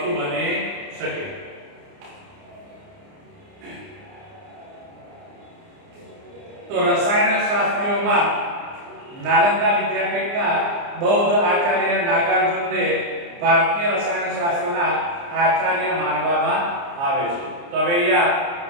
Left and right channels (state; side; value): late; left; 29 ms